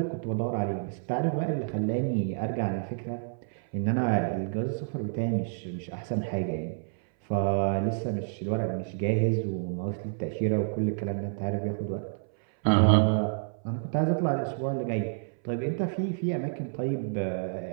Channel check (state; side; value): silent; left; 59 dB below the other